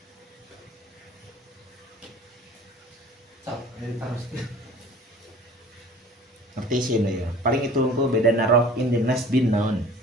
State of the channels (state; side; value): normal; both; correlation 0.46